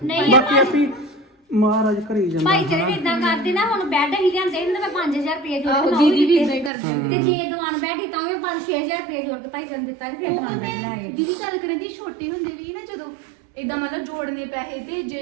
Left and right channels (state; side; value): drops out; left; at 6.7 s